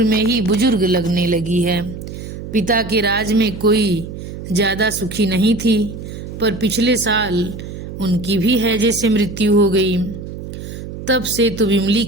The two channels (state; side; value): noise; right; hum, 10 dB below the sound